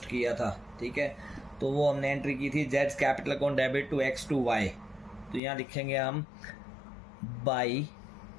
किया था। ठीक है, तो वो हमने एंट्री की थी Jades capital account debit to x to Y. तो यहाँ लिखेंगे हम by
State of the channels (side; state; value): right; drops out; at 5.4 s